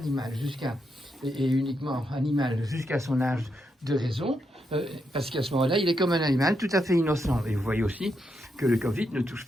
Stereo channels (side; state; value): both; normal; correlation 0.82